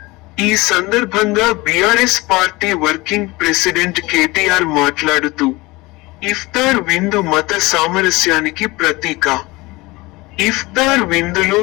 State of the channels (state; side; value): quieter; right; 22.1 dB